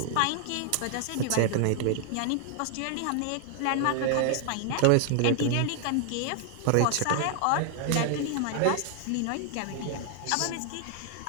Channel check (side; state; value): both; different; correlation 0.00